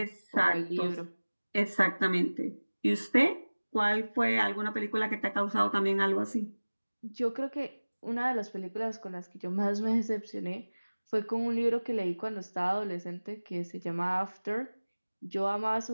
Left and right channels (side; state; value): both; inverted; correlation -1.00